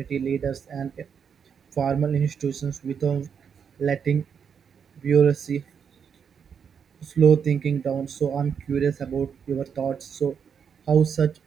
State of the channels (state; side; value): quieter; left; 7.1 dB